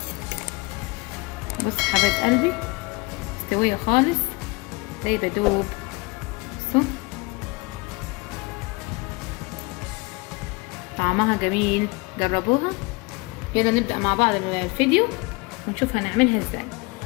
بص حبايب قلبي، مستويه خالص زي بدوب. بصوا طعمها جميل، جربوها. يلا نبدأ مع بعض الفيديو ونشوف هنعملها ازاي.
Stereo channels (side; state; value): right; quieter; 25.7 dB